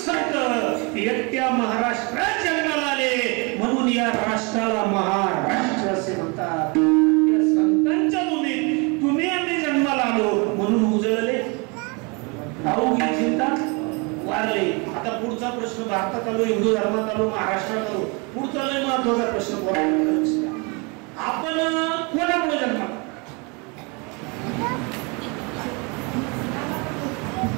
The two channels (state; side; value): quieter; left; 30.7 dB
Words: संत एकट्या महाराष्ट्रात जन्माला आले म्हणून या राष्ट्राला महाराष्ट्र असे म्हणतात. या संतांच्या भूमीत तुम्ही आम्ही जन्माला आलो म्हणून उजळले अवघी चिंता वारले. आता पुढचा प्रश्न भारतात आलो, हिंदू धर्मात आलो, महाराष्ट्रात आलो. पुढचा लय महत्वाचा प्रश्न आपण कोणामुळे जन्माला